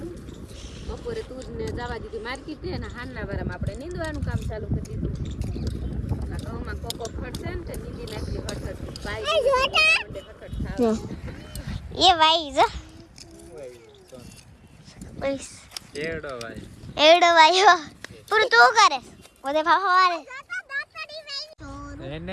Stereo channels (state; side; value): identical; both; correlation 1.00